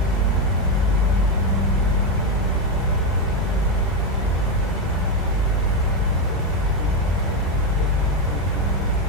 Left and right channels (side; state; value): both; normal; correlation 0.08